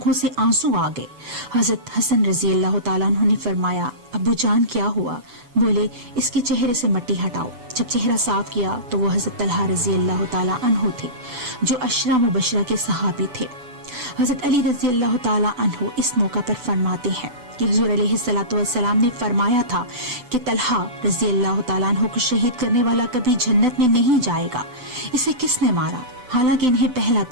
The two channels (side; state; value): left; late; 7.0 ms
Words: سے آنسو آ گئے۔ حضرت حسن رضی اللہ تعالیٰ عنہ نے فرمایا ابو جان کیا ہوا؟ بولے اس کے چہرے سے مٹی ہٹاؤ۔ جب چہرہ صاف کیا تو وہ حضرت طلحہ رضی اللہ تعالیٰ عنہ تھے جو عشرہ مبشرہ کے صحابی تھے۔ حضرت علی رضی اللہ تعالیٰ عنہ اس موقع پر فرماتے ہیں کہ حضور علیہ الصلوۃ والسلام نے فرمایا تھا کہ طلحہ رضی اللہ تعالیٰ عنہ کو شہید کرنے والا کبھی جنت میں نہیں جائے گا۔ اسے کس نے مارا؟ حالانکہ انہیں پہلا